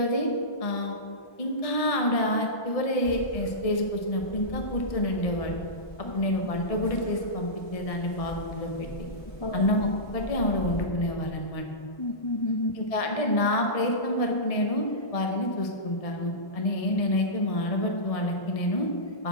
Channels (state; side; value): late; right; 1.6 ms